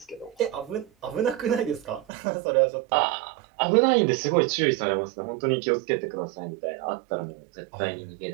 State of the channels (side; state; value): left; drops out; at 2.1 s